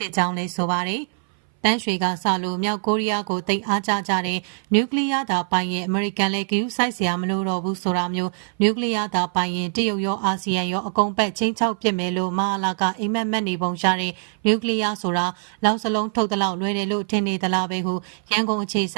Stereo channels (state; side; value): silent; left; 58 dB below the other